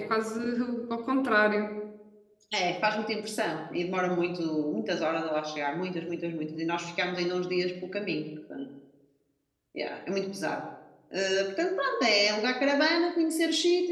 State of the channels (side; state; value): both; identical; correlation 1.00